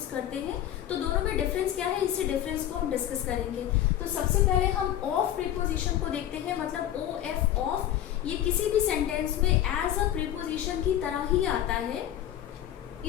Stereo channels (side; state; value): right; quieter; 11.7 dB